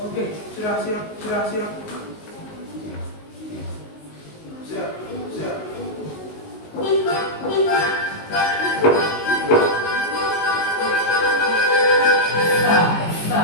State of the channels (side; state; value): right; late; 19 ms